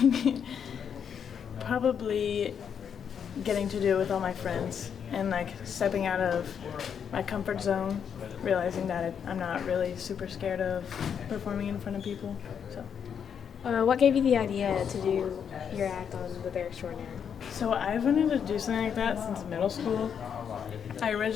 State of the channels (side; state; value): right; quieter; 7.6 dB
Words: Probably getting to do it with all my friends and like stepping out of my comfort zone, realizing that I'm not really super scared of performing in front of people. So. What gave you the idea to do your act on the Bear Extraordinaire? So I've wanted to do something like that since middle school. I